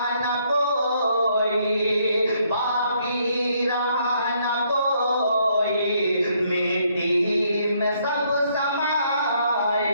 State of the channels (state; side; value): inverted; both; correlation -0.70